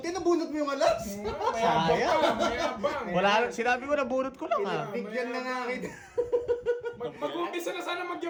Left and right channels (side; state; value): both; identical; correlation 1.00